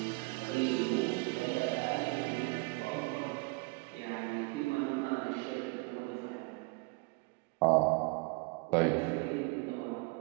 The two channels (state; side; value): quieter; left; 28.8 dB